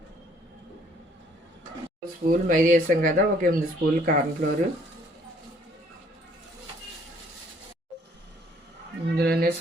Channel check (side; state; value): both; normal; correlation 0.62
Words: స్పూన్లు మైదా వేసాం కదా, ఒక 8 స్పూన్లు కార్న్ఫ్లోర్, ఇందులోనే